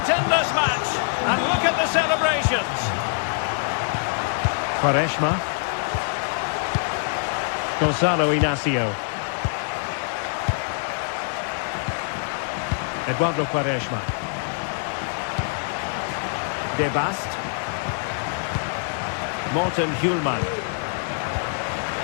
in this match. And look at the celebrations. Quaresma. Gonzalo Inacio. Eduardo Quaresma. De Bast. Morten Hjulman.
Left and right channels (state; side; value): silent; right; digital silence